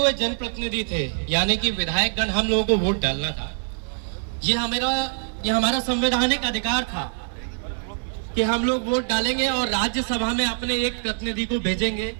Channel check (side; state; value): left; silent; digital silence